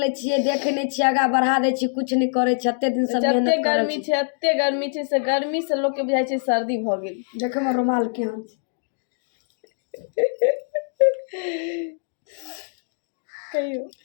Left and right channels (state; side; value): silent; right; digital silence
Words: छिए, देखे नहीं छिए, आगा बढ़ा दे छी, कुछ नहीं करे छी। एते दिन से मेहनत एते गर्मी छे, एते गर्मी छे से गर्मी से लोग के बुझाई छे सर्दी भ गेल। देखे में रुमाल केहन कहियो